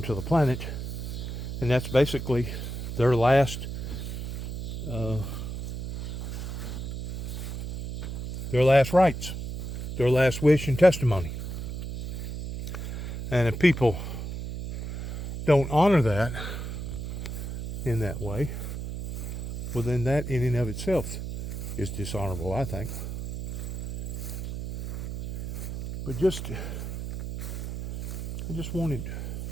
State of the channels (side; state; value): right; noise; hum, 5 dB below the sound